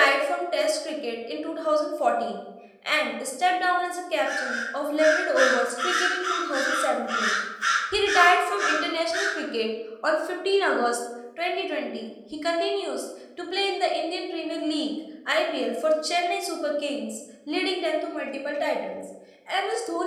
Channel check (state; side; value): identical; both; correlation 1.00